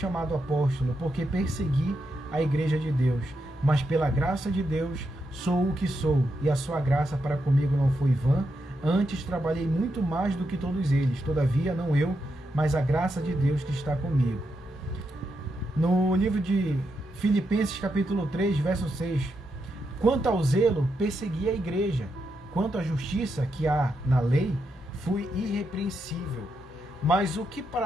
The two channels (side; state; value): both; normal; correlation 0.83